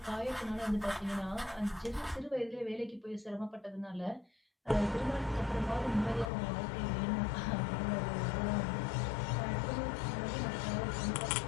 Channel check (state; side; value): drops out; right; at 6.3 s